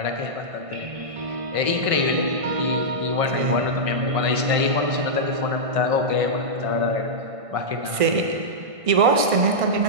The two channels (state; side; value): late; left; 1.6 ms